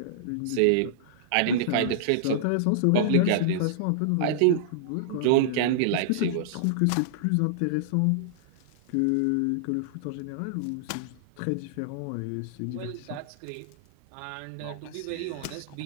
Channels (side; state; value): both; different; correlation -0.02